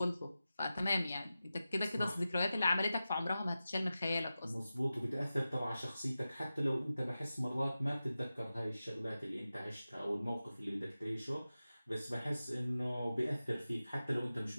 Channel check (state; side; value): inverted; both; correlation -0.94